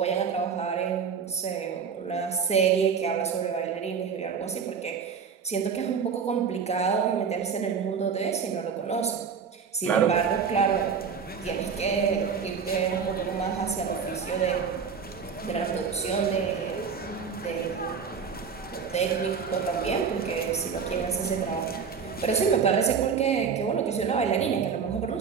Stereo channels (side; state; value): left; quieter; 6.3 dB